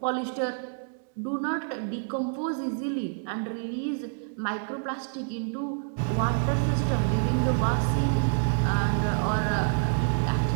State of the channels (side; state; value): left; silent; digital silence